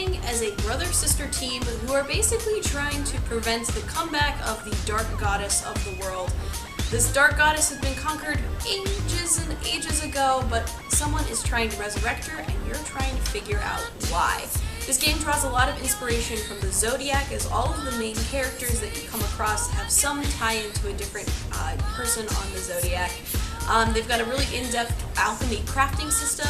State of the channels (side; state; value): both; identical; correlation 1.00